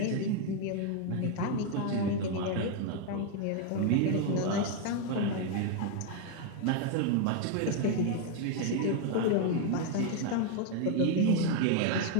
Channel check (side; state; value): both; different; correlation 0.01